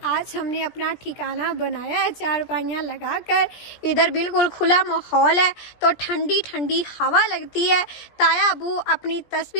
आज हमने अपना ठिकाना बनाया है, चारपाइयाँ लगाकर। इधर बिल्कुल खुला माहौल है तो ठंडी ठंडी हवा लगती है। ताया अबू अपनी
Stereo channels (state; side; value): late; right; 17 ms